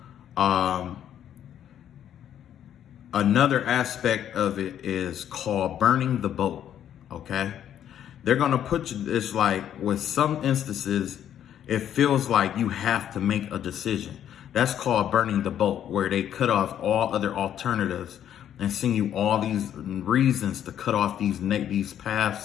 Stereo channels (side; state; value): right; quieter; 10.2 dB